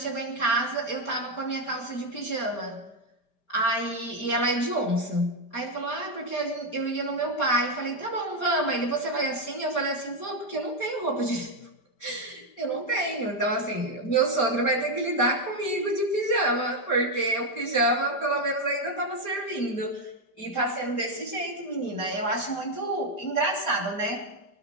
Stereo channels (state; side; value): late; right; 5.1 ms